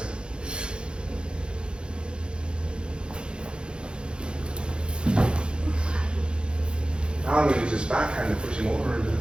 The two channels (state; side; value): late; left; 0.052 ms